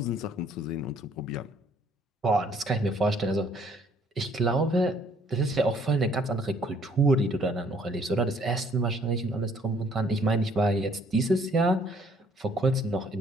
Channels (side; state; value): both; normal; correlation 0.62